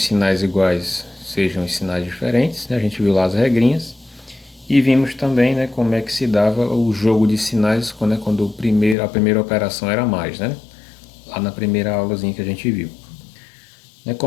sinais iguais, sejam os sinais diferentes, né? A gente viu lá as regrinhas e vimos também, né, como é que se dava o jogo de sinais quando a primeira operação era mais, né? Lá na primeira aulazinha que a gente viu.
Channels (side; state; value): right; drops out; at 9.0 s